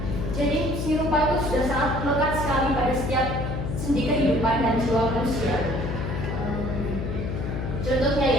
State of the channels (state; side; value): noise; left; hum, 4 dB below the sound